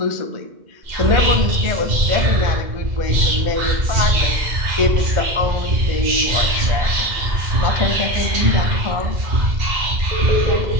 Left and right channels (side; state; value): left; late; 2.1 ms